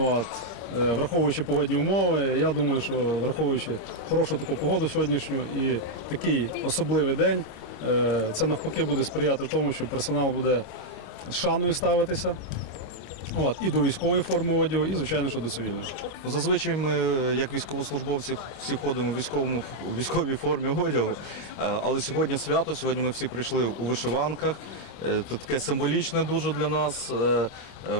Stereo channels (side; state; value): right; late; 26 ms